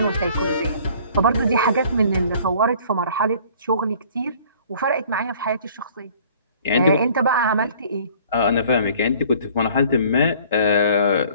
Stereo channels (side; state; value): both; inverted; correlation -0.53